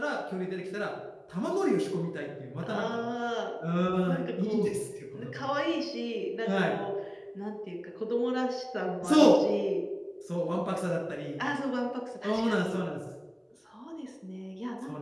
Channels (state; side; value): identical; both; correlation 1.00